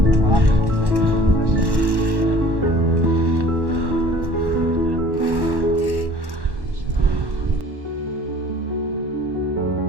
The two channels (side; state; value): left; late; 1.1 ms